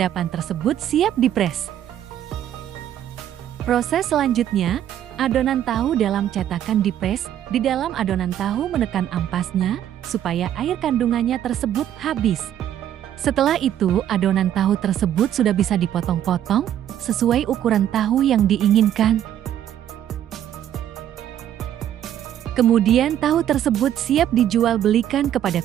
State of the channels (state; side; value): quieter; left; 10.9 dB